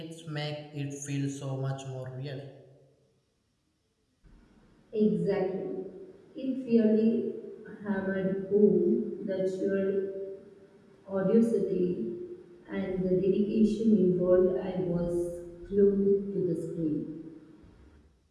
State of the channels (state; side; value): identical; both; correlation 1.00